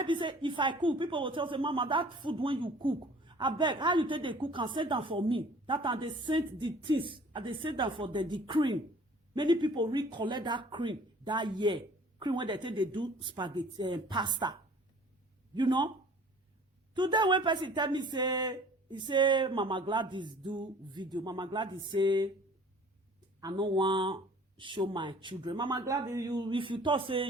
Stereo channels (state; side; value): normal; both; correlation 0.50